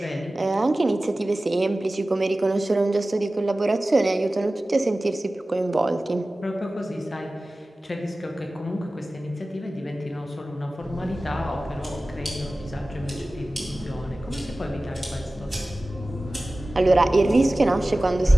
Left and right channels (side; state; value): both; normal; correlation 0.97